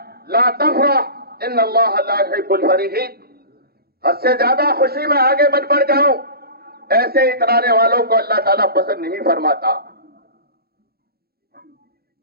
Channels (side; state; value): left; late; 0.45 ms